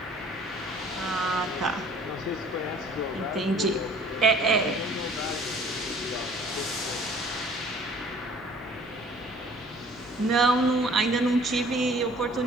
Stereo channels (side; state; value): both; normal; correlation 0.52